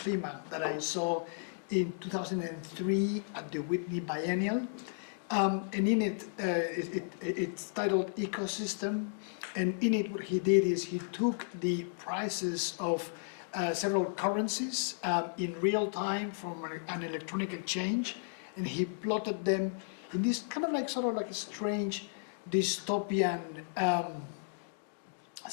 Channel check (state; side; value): silent; right; digital silence